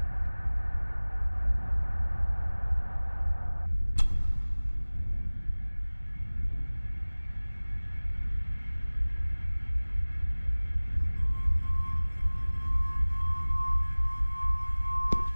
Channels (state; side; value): inverted; both; correlation -1.00